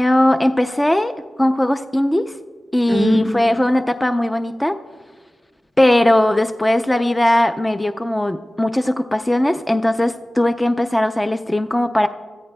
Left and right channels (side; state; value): both; normal; correlation 0.98